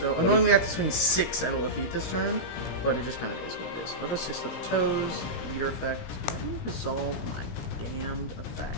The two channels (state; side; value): late; right; 17 ms